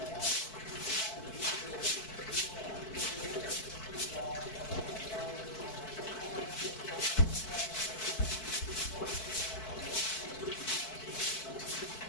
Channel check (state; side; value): late; right; 4.6 ms